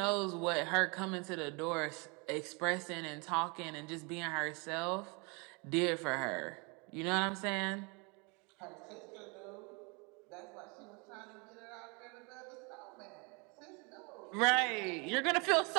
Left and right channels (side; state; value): left; quieter; 30.9 dB